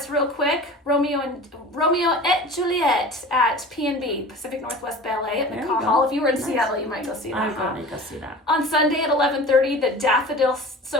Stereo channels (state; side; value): normal; both; correlation 0.38